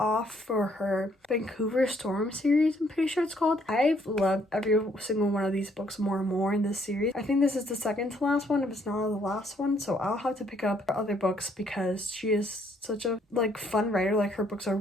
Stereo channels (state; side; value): normal; both; correlation 0.68